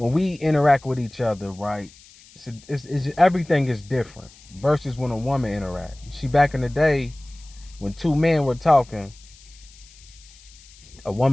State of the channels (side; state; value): left; noise; hiss, 24 dB below the sound